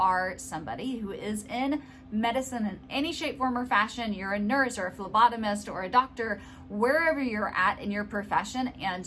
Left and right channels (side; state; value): both; identical; correlation 1.00